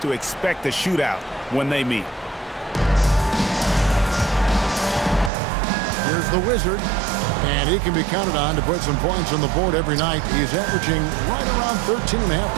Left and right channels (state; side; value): drops out; left; at 5.3 s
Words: to expect a shootout when they meet. Here's the Wizard, and he can be counted on to put some points on the board every night. He's averaging right around 13.5